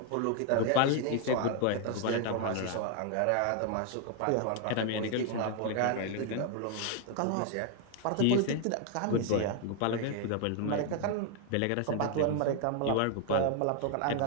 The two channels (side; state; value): both; different; correlation 0.00